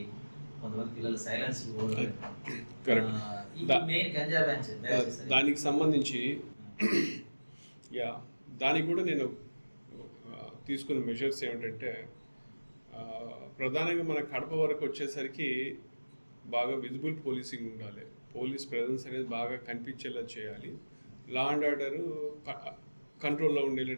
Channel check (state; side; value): inverted; both; correlation -1.00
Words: కొంతమంది పిల్లలు సైలెన్స్ మెయిన్ గంజా బ్యాచ్, దానికి సంబంధించి దానికి కూడా నేను తీసుకున్న మెజర్స్ ఏమిటంటే, ప్రధానంగా మన కడప వరకు వచ్చేసరికి బాగా విజిబుల్ పోలీసింగ్ ఉండాలి. పోలీస్ ప్రెజెన్స్ అనేది బాగా కనిపించేలా చేయాలి. లా అండ్ ఆర్డర్ కంట్రోల్లో